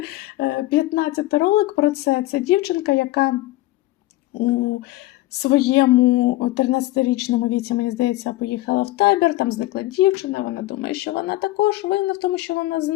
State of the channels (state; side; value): quieter; right; 17.5 dB